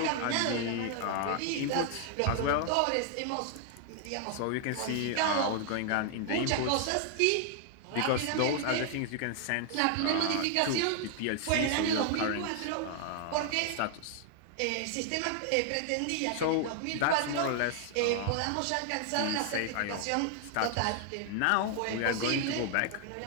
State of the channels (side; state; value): both; different; correlation 0.00